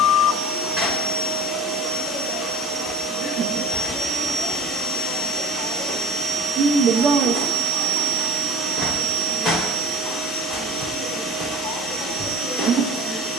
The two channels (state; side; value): normal; both; correlation 0.37